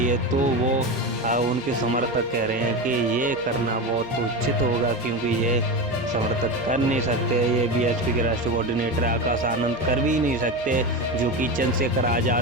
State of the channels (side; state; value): both; normal; correlation 0.21